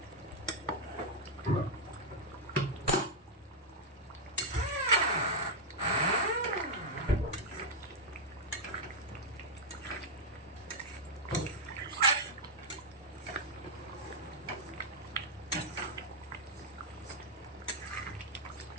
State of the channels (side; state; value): both; normal; correlation -0.02